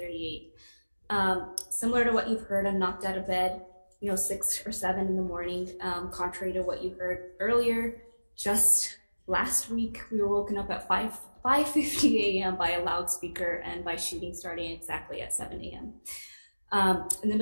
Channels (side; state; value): both; inverted; correlation -1.00